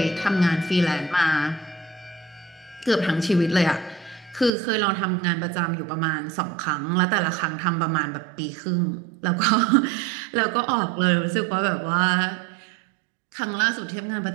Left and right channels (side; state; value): left; drops out; at 4.5 s